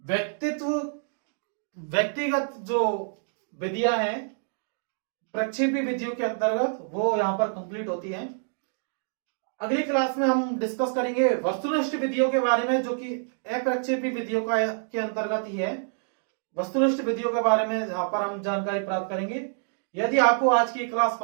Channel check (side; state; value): left; silent; digital silence